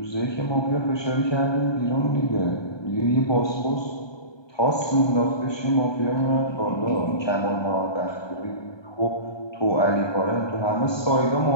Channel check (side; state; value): right; late; 1.2 ms